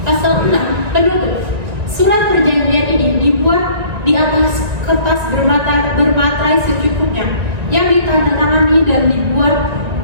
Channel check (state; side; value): late; left; 1.9 ms